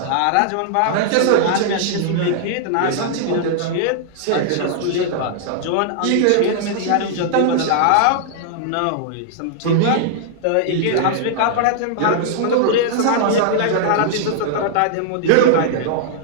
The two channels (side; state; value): both; different; correlation -0.01